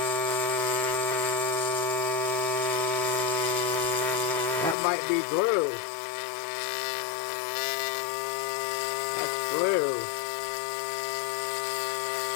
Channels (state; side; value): drops out; right; at 4.8 s